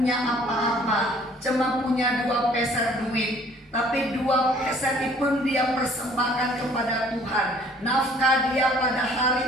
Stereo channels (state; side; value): normal; both; correlation 0.56